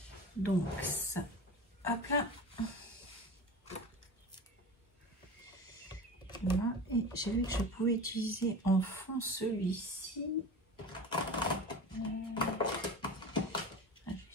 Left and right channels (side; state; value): both; normal; correlation 0.32